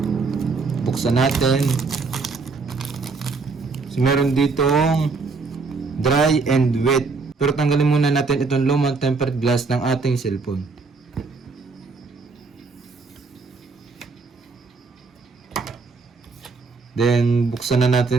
buksan natin. So meron ditong dry and wet. Pero tanggalin muna natin itong lumang tempered glass ng ating cellphone. Then buksan na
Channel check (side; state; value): left; quieter; 4.3 dB